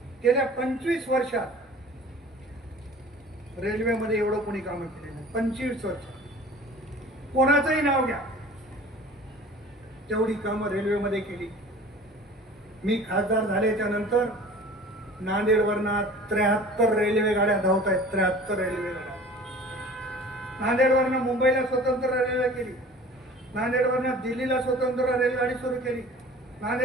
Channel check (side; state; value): both; normal; correlation 0.44